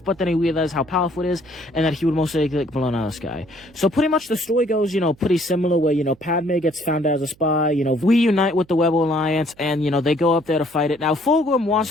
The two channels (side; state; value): right; noise; hum, 29 dB below the sound